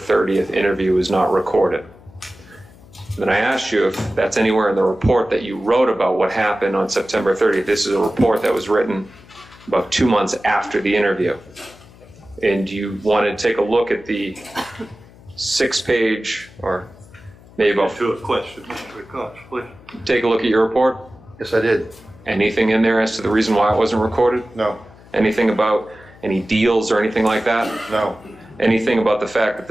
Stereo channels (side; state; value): left; noise; hum, 23 dB below the sound